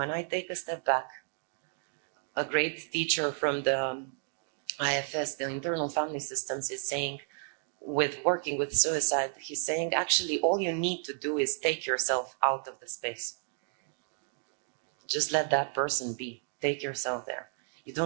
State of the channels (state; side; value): silent; left; digital silence